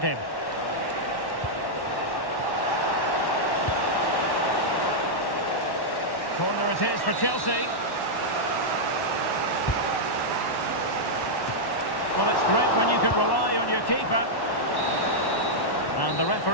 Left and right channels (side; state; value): right; late; 1.1 ms